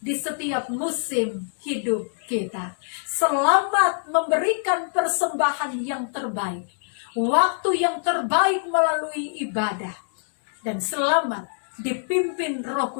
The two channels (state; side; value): silent; right; digital silence